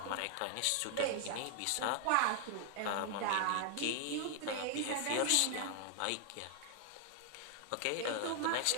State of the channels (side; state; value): both; different; correlation 0.00